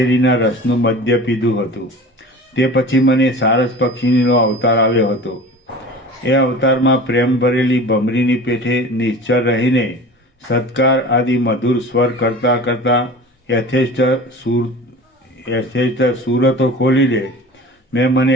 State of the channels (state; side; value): normal; both; correlation 0.38